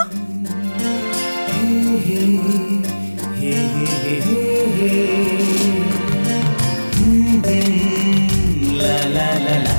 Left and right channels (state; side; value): inverted; both; correlation -1.00